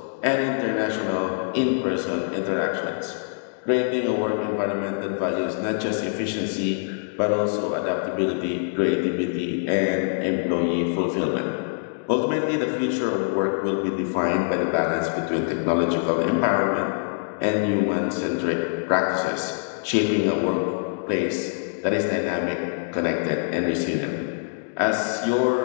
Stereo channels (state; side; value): silent; right; digital silence